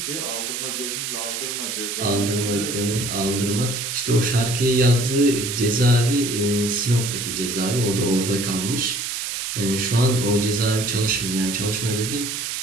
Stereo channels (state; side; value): noise; right; hiss, 4 dB below the sound